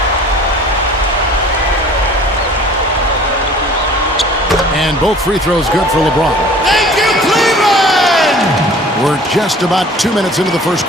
And both free throws good for LeBron. Thank you, Cleveland! We're just about 2 minutes into the first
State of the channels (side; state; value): both; normal; correlation 0.48